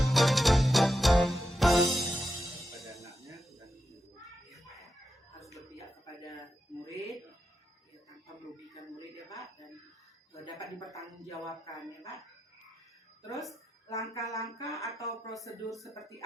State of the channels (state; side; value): normal; both; correlation 0.87